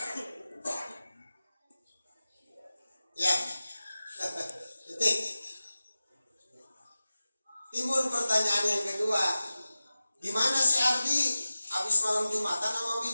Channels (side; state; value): both; inverted; correlation -0.95